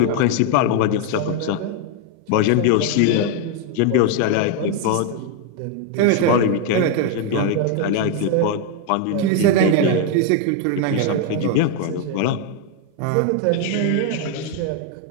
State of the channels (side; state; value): both; different; correlation 0.01